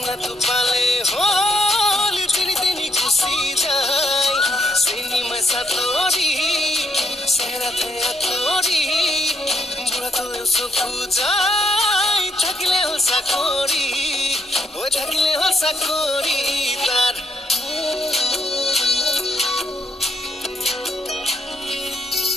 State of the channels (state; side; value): normal; both; correlation 0.74